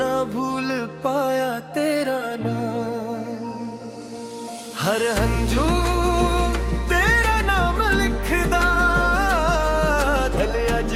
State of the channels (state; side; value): identical; both; correlation 1.00